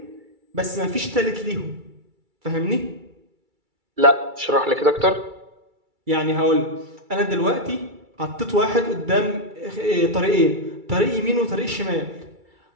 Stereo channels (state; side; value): late; left; 2.3 ms